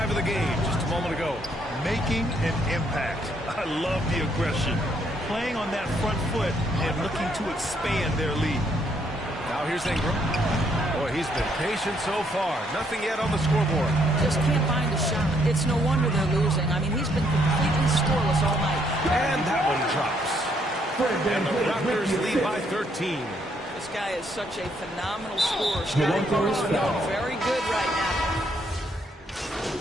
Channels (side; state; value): both; normal; correlation 0.71